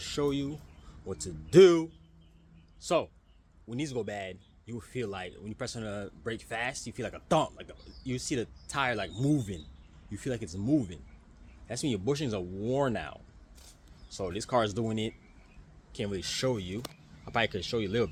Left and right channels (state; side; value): identical; both; correlation 1.00